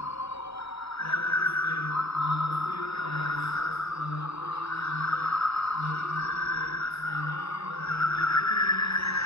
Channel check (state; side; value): late; right; 0.78 ms